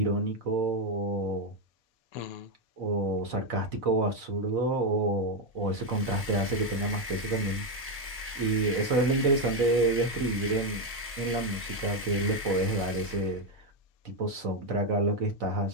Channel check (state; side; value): normal; both; correlation 0.06